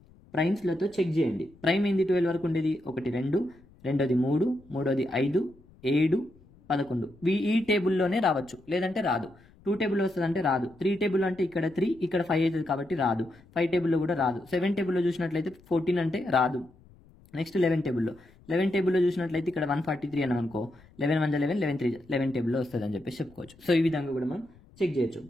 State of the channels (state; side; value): noise; left; rumble, 27 dB below the sound